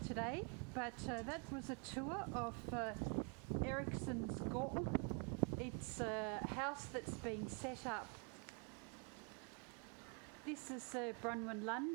but that was a tour of Erichsens Gaard. It's a house that's been set up. This is Bronwyn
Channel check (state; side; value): quieter; left; 35.9 dB